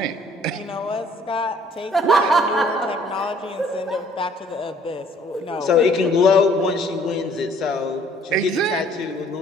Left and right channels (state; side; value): normal; both; correlation 0.58